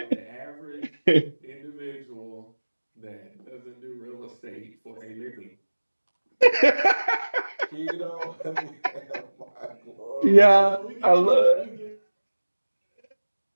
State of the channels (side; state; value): both; inverted; correlation -1.00